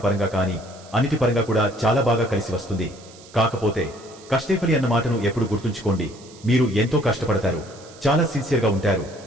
పరంగా కాని, అన్నిటి పరంగా కూడా చాలా బాగా కలిసి వస్తుంది. కాకపోతే కష్టేఫలి అన్న మాటను ఎప్పుడు గుర్తుంచుకోండి. మీరు ఎంతో కష్టపడతారు, చాలా సిన్సియర్గా ఉంటారు.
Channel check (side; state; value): right; noise; hiss, 22 dB below the sound